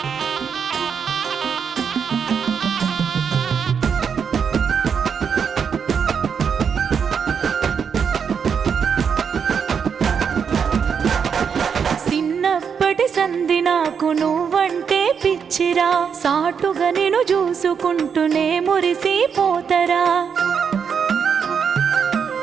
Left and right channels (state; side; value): quieter; left; 6.8 dB